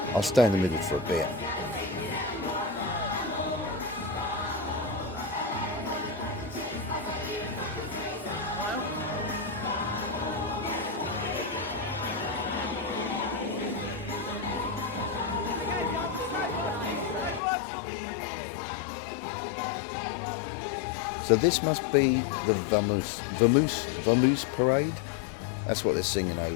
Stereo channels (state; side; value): drops out; right; at 17.4 s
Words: I'll stay in the middle for a bit. So this must be the Vamoose parade. That's what they're singing